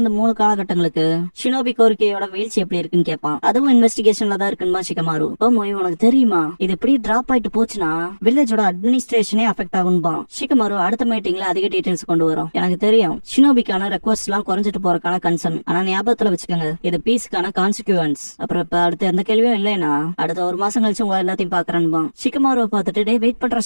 3 காலகட்டங்களுக்கு ஷினோபி கோரிக்கையோட வீழ்ச்சி எப்படி இருக்குன்னு கேட்பான். அதுவும் இன்வெஸ்டிகேஷன்ல தான் இருக்குன்பா ஷிகமாரு. ஓ மொய், உனக்கு தெரியுமா இது எப்படி டிராப் ஆயிட்டு போச்சுன்னா வில்லேஜோட அட்மினிஸ்ட்ரேஷனே அஃபெக்ட் ஆகும்பா. ஷிகமாரு அடுத்த மீட்டிங்ல அதிக டீடைல்ஸ் கொண்டு வரும். எனக்கு தெரியும் ஷினோபிக்கான ரெக்வஸ்ட் எல்லாம் குறைஞ்சிட்டு போறதுக்கான கன்சர்ன், ஆனா ஞாபகத்துல வச்சுக்கோங்க இது பீஸ்க்கான கான்சிக்வன்ஸ். அப்புறம் இப்ப அடுத்து எந்த கேள்வியும் இல்லைன்னா அடுத்த ஒரு மாசம் கழிச்சு உங்க எல்லாத்தையும் பாக்குறேன்பா. ஷிகமாருவை பார்த்துட்டு டே வெயிட் பண்ற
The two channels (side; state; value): both; inverted; correlation -1.00